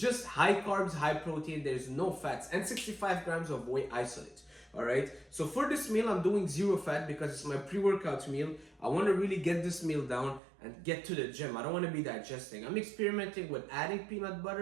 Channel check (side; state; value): left; drops out; at 10.4 s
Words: high carbs, high protein, there's no fats, and 65 grams of whey isolate, all right? So for this meal, I'm doing zero fat because it's my pre-workout meal. I want to really get this meal down and get to the gym. I don't want to be digesting. I'm experimenting with adding peanut